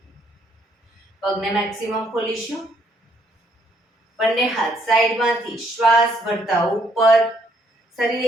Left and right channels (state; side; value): normal; both; correlation 0.69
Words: પગને મેક્સિમમ ખોલીશું. બંને હાથ સાઈડમાંથી શ્વાસ ભરતા ઉપર. શરીર